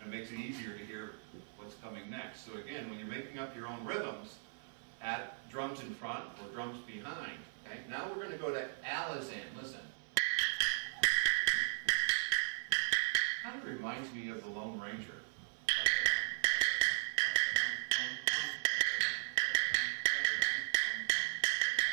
and makes it easier to hear what's coming next. So again, when you're making up your own rhythms, add drums in front or drums behind. Okay? Now we're going to go to Alizan. Listen. Kind of reminds me of the Lone Ranger.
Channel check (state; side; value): silent; left; 53 dB below the other